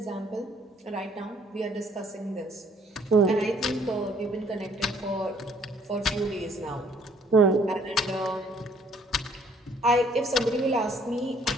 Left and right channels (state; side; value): normal; both; correlation 0.61